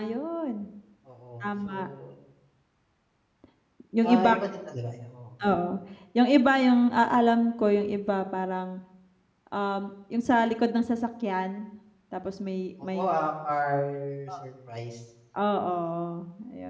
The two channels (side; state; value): both; identical; correlation 1.00